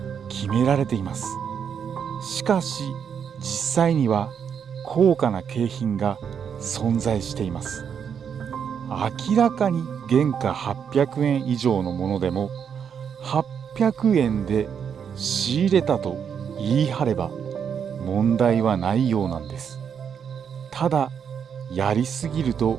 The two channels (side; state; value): left; quieter; 7.5 dB